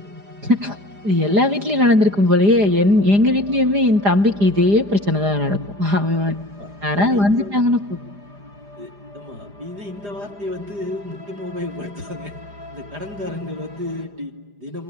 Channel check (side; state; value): left; late; 4.9 ms